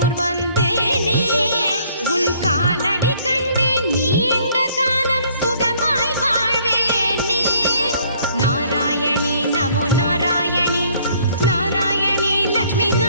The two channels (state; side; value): inverted; both; correlation -0.61